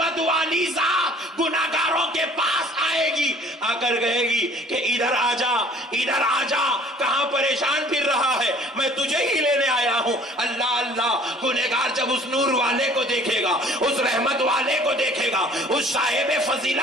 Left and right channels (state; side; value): normal; both; correlation 0.52